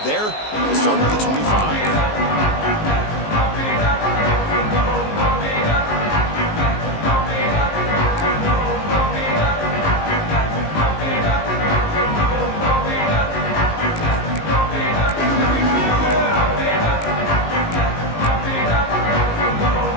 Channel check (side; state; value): right; late; 19 ms